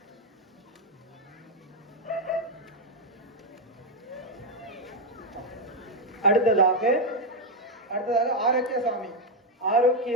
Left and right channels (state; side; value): normal; both; correlation 0.03